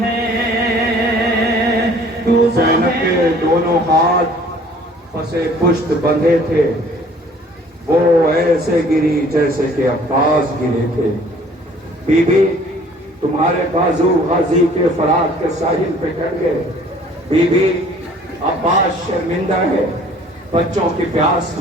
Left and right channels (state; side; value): normal; both; correlation 0.54